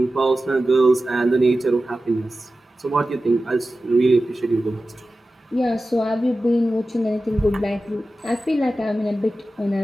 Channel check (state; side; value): normal; both; correlation 0.94